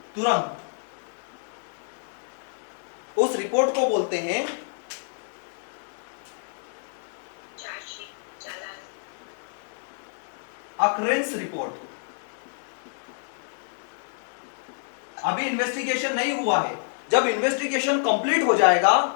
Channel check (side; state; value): right; silent; 60 dB below the other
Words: तुरंत। उस रिपोर्ट को बोलते हैं अकरेंस रिपोर्ट। अभी इन्वेस्टिगेशन नहीं हुआ है, जब इन्वेस्टिगेशन कंप्लीट हो जाएगा,